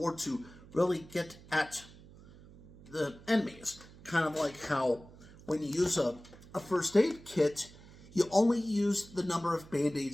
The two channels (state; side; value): noise; right; hum, 21 dB below the sound